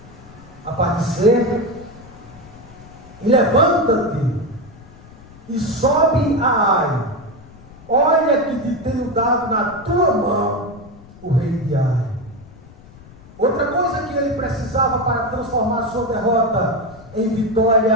A parte C: e levanta-te e sobe a Ai. Olha que te tenho dado na tua mão o rei de Ai. Outra coisa que ele precisava para transformar a sua derrota em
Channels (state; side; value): noise; left; rumble, 21 dB below the sound